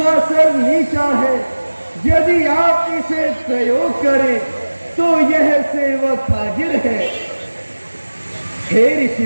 सर नीचा है। यदि आप इसे प्रयोग करें तो यह सेवक हाजिर है। हे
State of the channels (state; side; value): inverted; both; correlation -1.00